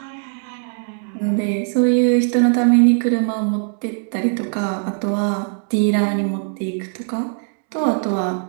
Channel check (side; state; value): left; silent; 59 dB below the other